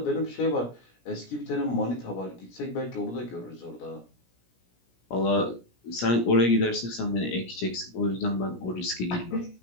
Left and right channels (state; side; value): late; right; 17 ms